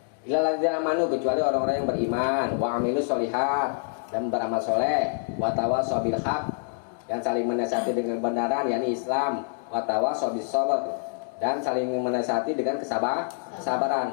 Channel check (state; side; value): silent; right; digital silence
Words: Illalladzina amanu, kecuali orang-orang yang beriman, wa amilus sholihat, dan beramal soleh, wa tawassaw bil haq, dan saling menasihati dengan kebenaran, yakni Islam, wa tawassaw bis sabr, dan saling menasihati dengan kesabaran.